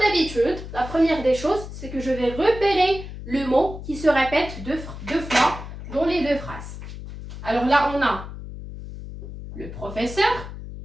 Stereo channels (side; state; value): left; noise; hum, 11 dB below the sound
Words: la première des choses, c'est que je vais repérer le mot qui se répète deux fois dans les deux phrases. Alors là, on a le professeur